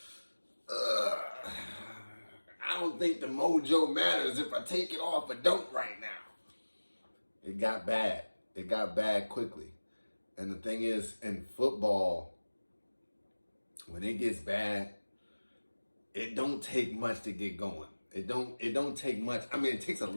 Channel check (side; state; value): both; inverted; correlation -1.00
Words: I don't think the mojo matters if I take it off or don't right now. It got bad. It got bad quickly. And the thing is, in football, when it gets bad, it don't take much to get going. It don't take much. I mean, it takes a